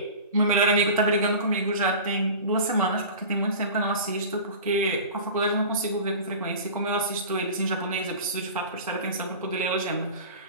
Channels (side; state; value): both; inverted; correlation -0.35